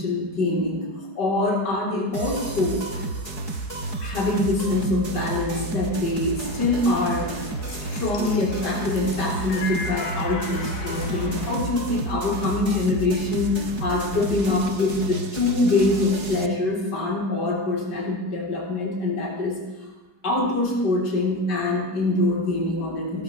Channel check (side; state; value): right; late; 4.7 ms